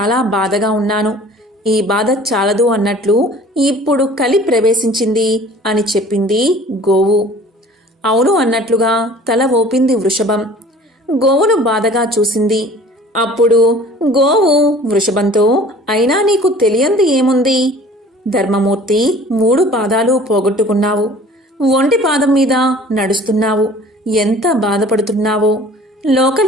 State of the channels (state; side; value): normal; both; correlation 0.47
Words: బాధగా ఉన్నాను. ఈ బాధ చాలదు అన్నట్లు ఇప్పుడు కలి ప్రవేశించింది అని చెప్పింది గోవు. అవును అన్నట్లుగా తల ఊపింది వృషభం. గోవును బాధగా చూసింది. అప్పుడు గోవు వృషభంతో, అయినా నీకు తెలియంది ఏముంది? ధర్మమూర్తి 3 పాదాలు పోగొట్టుకున్నావు. ఒంటి పాదం మీద నడుస్తున్నావు. ఎంత బాధపడుతున్నావో.